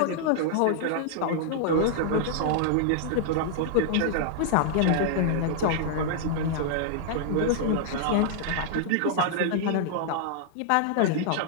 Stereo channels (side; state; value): both; different; correlation -0.01